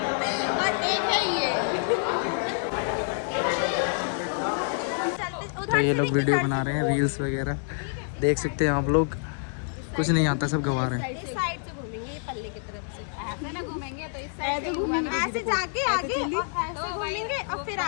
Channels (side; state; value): right; silent; 60 dB below the other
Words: और एक है ये। तो ये लोग वीडियो बना रहे हैं, रील्स वगैरह देख सकते हैं आप लोग। कुछ नहीं आता, सब गवा रहे हैं। इस साइड से घूमेंगे, ये पल्ले की तरफ से। ऐसे ना घूमेंगे तो इस साइड से घूमेंगे, ऐसे जाके आगे और ऐसे घूमेंगे और फिर